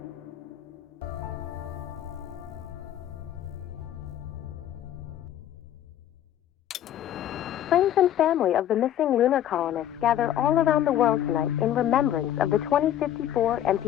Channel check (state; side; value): quieter; right; 11.3 dB